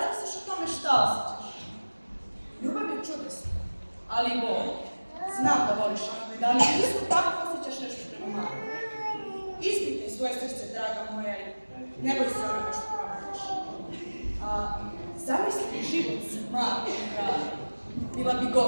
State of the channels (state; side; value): inverted; both; correlation -1.00